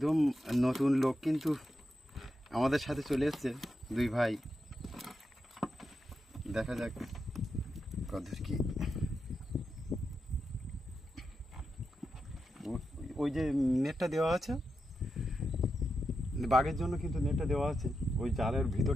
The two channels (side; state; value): both; normal; correlation 0.87